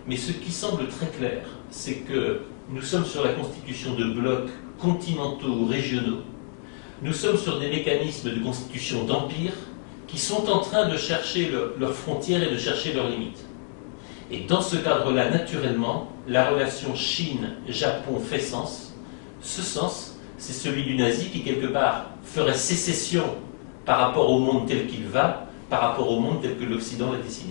Mais ce qui semble très clair, c'est que nous sommes sur la constitution de blocs continentaux ou régionaux. Nous sommes sur des mécanismes de constitution d'empires qui sont en train de chercher leurs frontières et de chercher leurs limites. Et dans ce cadre-là, naturellement, la relation Chine-Japon fait sens. Ce sens, c'est celui du nazi qui, quelque part, ferait sécession par rapport au monde tel qu'il va, par rapport au monde tel que l'Occident l'a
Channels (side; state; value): right; silent; 55 dB below the other